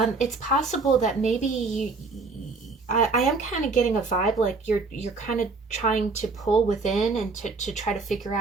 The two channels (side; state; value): left; quieter; 4.1 dB